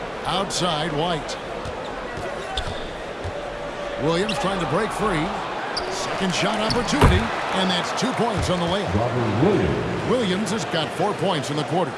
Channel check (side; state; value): both; identical; correlation 1.00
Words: Outside, White. Williams trying to break free. Second shot opportunity, and that's 2 points on the layup. Williams has got 4 points in the quarter.